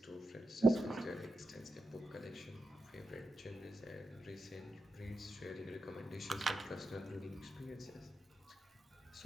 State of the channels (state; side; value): normal; both; correlation 0.88